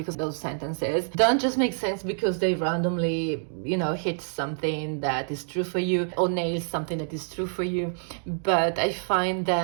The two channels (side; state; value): left; silent; digital silence